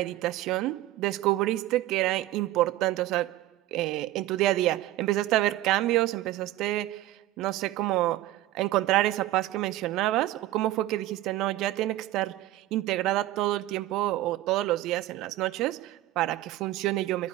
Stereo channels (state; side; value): quieter; left; 15.5 dB